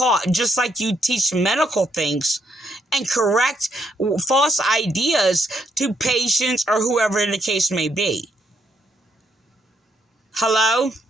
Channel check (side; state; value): both; normal; correlation 0.74